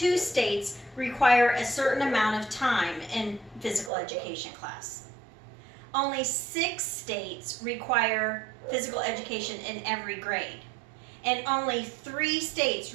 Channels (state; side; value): drops out; left; at 3.9 s